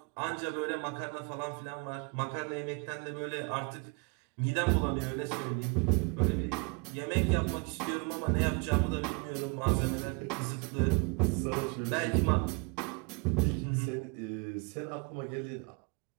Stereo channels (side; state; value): left; quieter; 31.1 dB